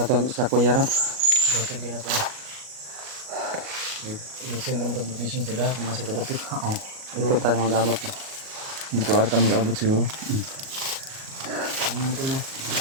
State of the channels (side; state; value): left; late; 38 ms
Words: sa kuya ron. Bato kaya pa. Nagsin kami mag-location sila kung masih padapit. Oo. Ito tayo mag-abot. Dito arta mag-abot siguro. Ano ito mo?